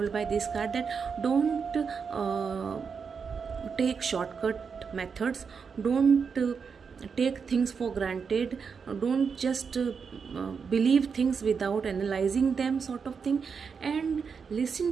by this card, that don't take shortcut methods, don't take things for granted, don't just believe things without analyzing them, sort of thing, and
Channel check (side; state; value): left; quieter; 5.9 dB